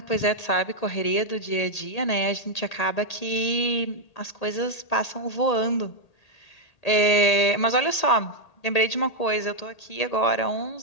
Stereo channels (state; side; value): late; right; 1.8 ms